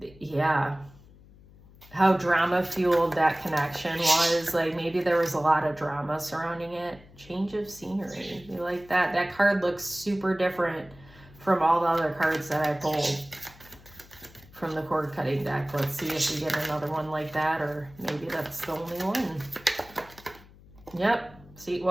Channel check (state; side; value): noise; left; hum, 23 dB below the sound